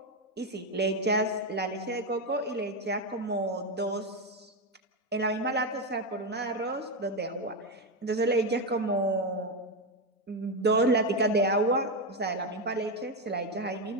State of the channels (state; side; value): normal; both; correlation 0.09